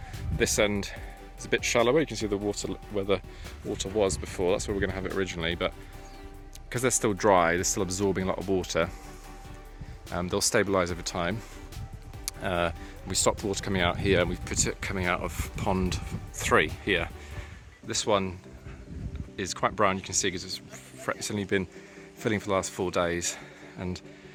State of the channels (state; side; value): identical; both; correlation 1.00